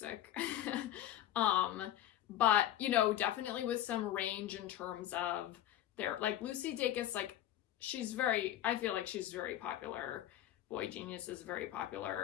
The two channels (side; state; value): right; quieter; 12.4 dB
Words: But, you know, definitely with some range in terms of their, like Lucy Dacus, like I feel like she's very popular. Boy Genius is very